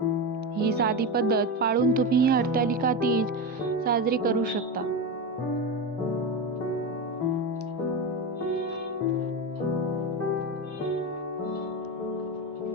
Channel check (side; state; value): both; normal; correlation 0.18